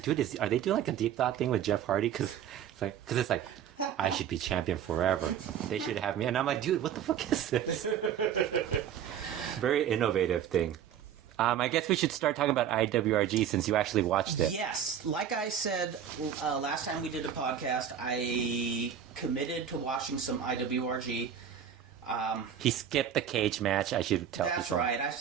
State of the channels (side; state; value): left; quieter; 9.0 dB